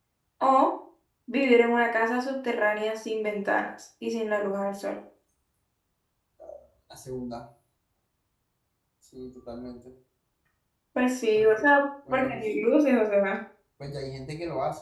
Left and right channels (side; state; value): both; identical; correlation 1.00